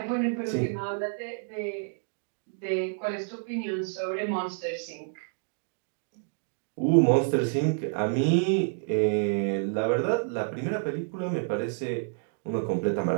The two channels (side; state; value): left; silent; 59 dB below the other